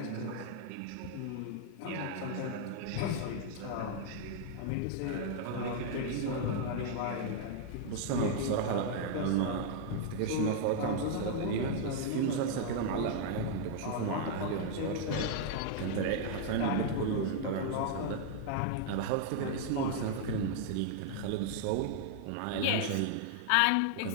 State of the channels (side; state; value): both; different; correlation -0.01